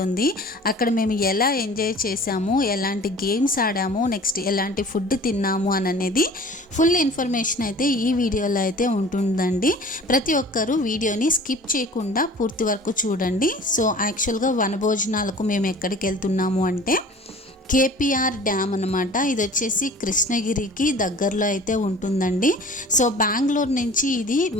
అక్కడ మేము ఎలా ఎంజాయ్ చేసాము, ఎలాంటి గేమ్స్ ఆడాము, నెక్స్ట్ ఎలాంటి ఫుడ్ తిన్నాము అనేది ఫుల్ ఇన్ఫర్మేషన్ అయితే ఈ వీడియోలో అయితే ఉంటుందండి. ప్రతి ఒక్కరూ వీడియోని స్కిప్ చేయకుండా పూర్తి వరకు చూడండి. సో యాక్చువల్గా వనభోజనాలకు మేము ఎక్కడికి వెళ్తున్నాము అంటే కేపీఆర్ డ్యామ్ అనమాట. ఇది వచ్చేసి కృష్ణగిరికి దగ్గరలో అయితే ఉంటుందండి. సో బెంగళూరు నుంచి ఇది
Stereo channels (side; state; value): both; normal; correlation 0.45